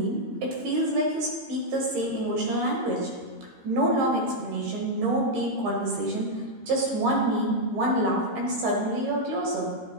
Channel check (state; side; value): late; left; 13 ms